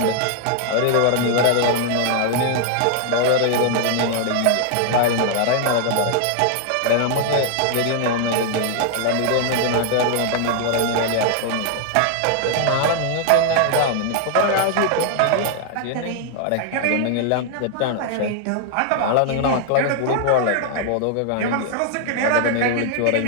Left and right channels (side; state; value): both; different; correlation 0.00